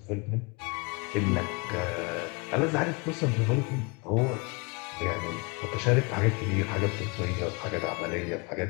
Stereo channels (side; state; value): right; quieter; 29.4 dB